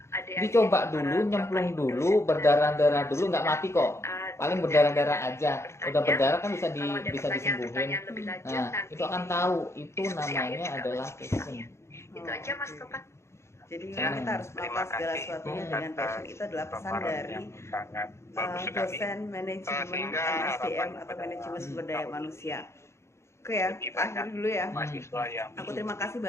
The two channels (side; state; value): right; late; 0.13 ms